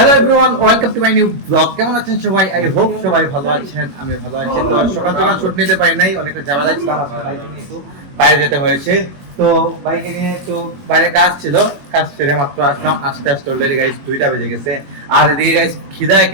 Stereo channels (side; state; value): left; late; 21 ms